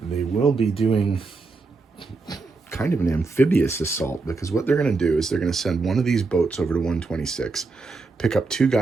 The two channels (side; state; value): left; quieter; 3.9 dB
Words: they will be doing kind of an amphibious assault, because what they're going to do is they're going to send one of these boats over to 126, pick up 2